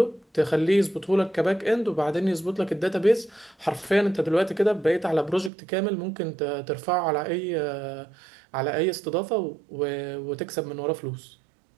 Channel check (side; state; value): left; drops out; at 5.5 s